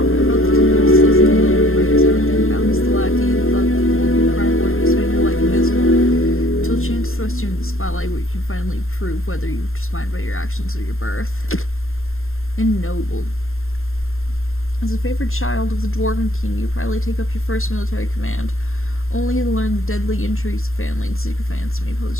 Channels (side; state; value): right; late; 0.61 ms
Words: spotlight where you can finally prove whether you're defined by your actions or your birth. Ennobled. As a favored child of the Dwarven King, you probably take up your first military command, only to learn the deadly intrigues of family and sycophants may